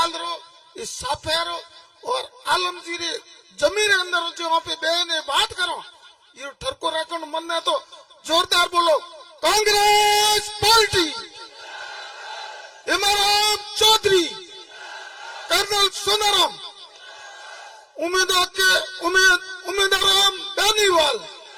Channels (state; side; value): identical; both; correlation 1.00